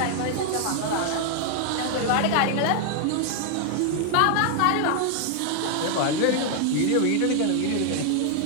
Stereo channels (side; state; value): both; different; correlation 0.00